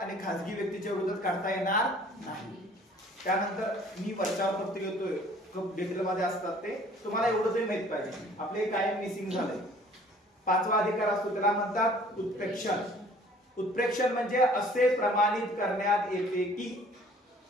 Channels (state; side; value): normal; both; correlation 0.53